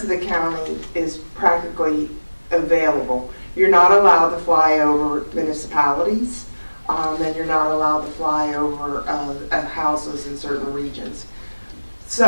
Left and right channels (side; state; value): both; inverted; correlation -1.00